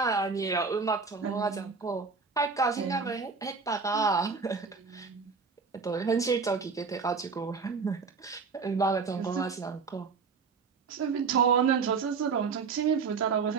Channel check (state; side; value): quieter; left; 5.0 dB